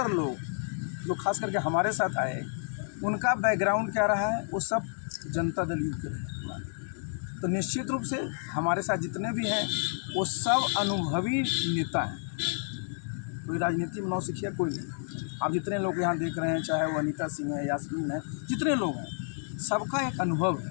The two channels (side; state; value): right; silent; digital silence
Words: लोग जो खास करके हमारे साथ आए उनका बैकग्राउंड क्या रहा है, वो सब जनता दल यू के रहे। तो निश्चित रूप से हमारे साथ जितने भी हैं वो सब अनुभवी नेता हैं, कोई राजनीति में नौसिखिया कोई नहीं। आप जितने लोग यहाँ देख रहे हैं, चाहे वो अनीता सिंह है, यास्मीन है, जितने लोग हैं सबका एक अनुभव